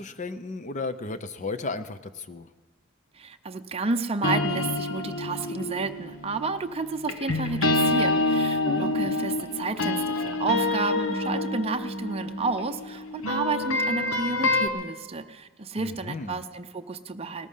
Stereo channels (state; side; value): normal; both; correlation 0.03